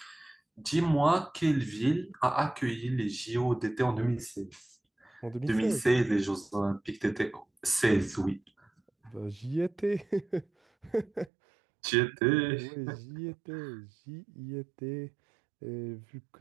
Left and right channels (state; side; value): drops out; left; at 11.3 s